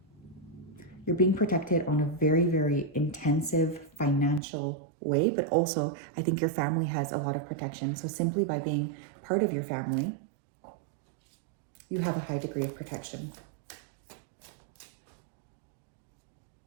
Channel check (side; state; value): left; drops out; at 4.4 s